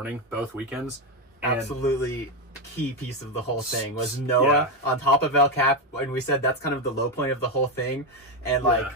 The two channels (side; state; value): both; normal; correlation 0.08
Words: both weekends. And Absolutely key piece of the whole thing was Noah on top of El Cap, and we said that's kind of the low point of the whole thing. And